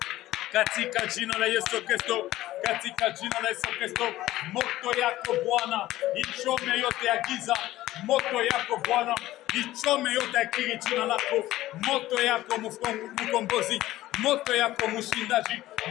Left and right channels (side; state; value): right; quieter; 15.6 dB